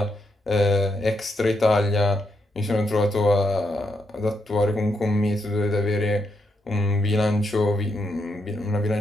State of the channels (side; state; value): both; normal; correlation 0.80